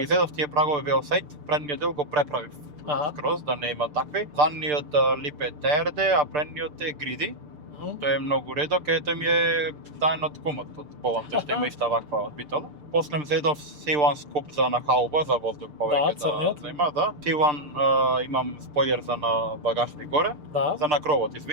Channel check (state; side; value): late; left; 6.7 ms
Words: зедов тие прагови Велсајт, предниот дел го преправив Аха. скроз да не има такви. Задниот лип е TRD, а предниот е Гриди. Тој е многу редок, тој ми е таен од кумот, од Полан, тој што има иста ваква од битола. После зедов C1 скуп за на хауба, за воздух повеќе црниот. има, да. C1 имам спојлер за на багажник горе, Да. за на кровот,